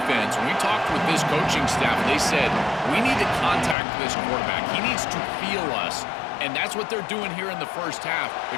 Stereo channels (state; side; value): drops out; right; at 3.8 s